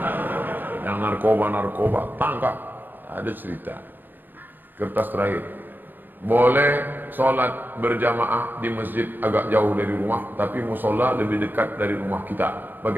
Yang narkoba, tangkap. Ada cerita. Kertas terakhir. Boleh sholat berjamaah di masjid agak jauh dari rumah, tapi musola lebih dekat dari rumah kita.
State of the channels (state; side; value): late; left; 0.091 ms